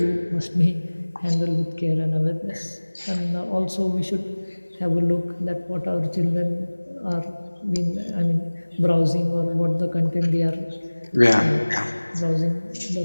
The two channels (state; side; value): inverted; both; correlation -1.00